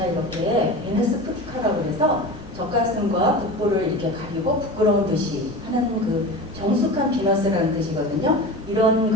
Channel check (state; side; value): normal; both; correlation 0.31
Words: 베네스 푸티카라고 해서 젖가슴과 복부를 이렇게 가리고 부끄러운 듯이 하는 정숙한 비너스라는 뜻이거든요.